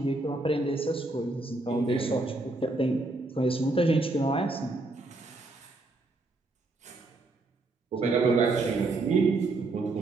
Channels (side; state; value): left; quieter; 3.0 dB